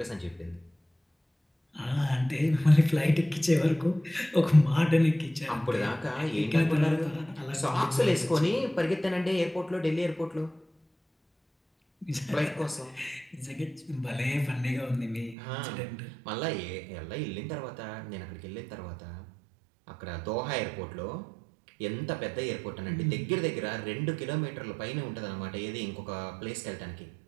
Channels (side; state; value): left; drops out; at 15.4 s